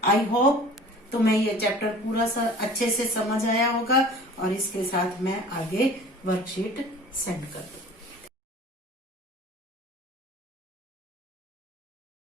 आई होप तुम्हें ये चैप्टर पूरा अच्छे से समझ आया होगा, और इसके साथ मैं आगे वर्कशीट सेंड कर दूँ।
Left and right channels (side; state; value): both; normal; correlation 0.45